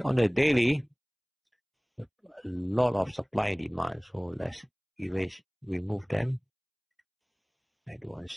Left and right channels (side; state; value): both; identical; correlation 1.00